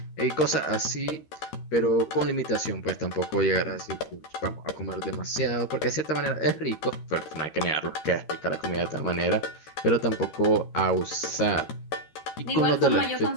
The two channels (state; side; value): late; right; 13 ms